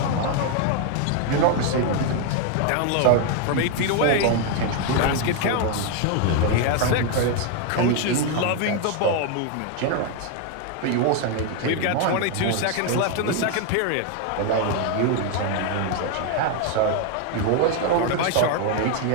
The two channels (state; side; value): different; both; correlation 0.01